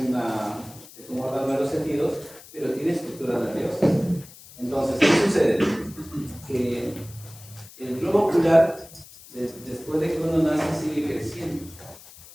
un órgano de los sentidos, pero tiene estructura nerviosa. Entonces, ¿qué sucede? Que el globo ocular, después de que uno nace, sigue creciendo.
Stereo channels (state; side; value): noise; left; hiss, 20 dB below the sound